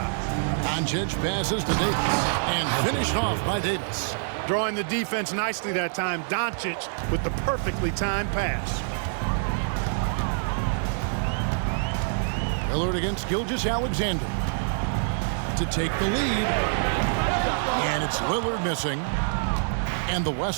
Doncic passes to Davis and finished off by Davis. Drawing the defense nicely that time. Doncic with the perfectly timed pass. Lillard against Gilgeous-Alexander to take the lead. And it's Lillard missing. And the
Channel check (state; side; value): silent; left; 61 dB below the other